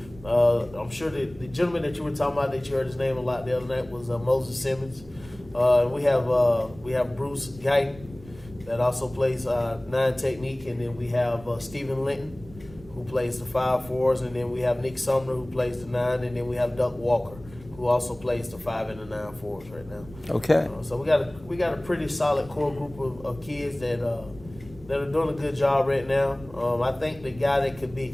I'm sure the gentleman that you were talking about, that you heard his name a lot the other night, was Moses Simmons. We have Bruce Guyton that also plays 9 technique, and then we have Stephen Linton, who plays the 5-4s, and then we have Nick Sumner, who plays the 9, and then we have Duck Walker, who also plays the 5 and the 9-4s right now. Okay. So we got a pretty solid core group of kids that are doing a good job right now. I think the guy that could be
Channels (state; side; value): noise; right; rumble, 20 dB below the sound